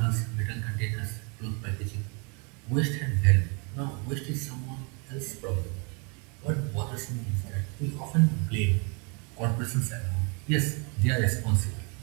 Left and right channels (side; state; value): left; quieter; 33.6 dB